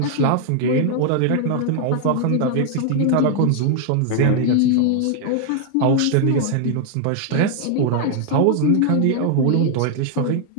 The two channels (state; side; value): different; both; correlation 0.00